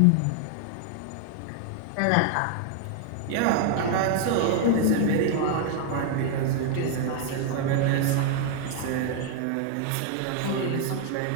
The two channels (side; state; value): both; different; correlation 0.00